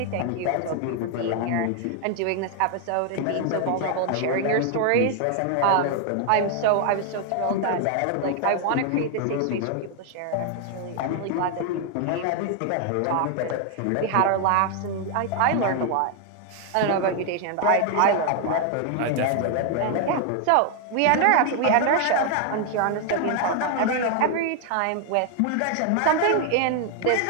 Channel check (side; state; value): both; different; correlation 0.00